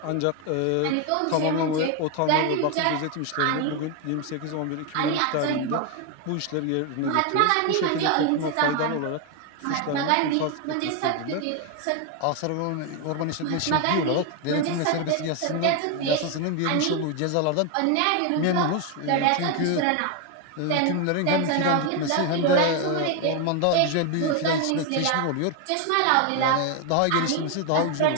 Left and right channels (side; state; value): both; different; correlation 0.01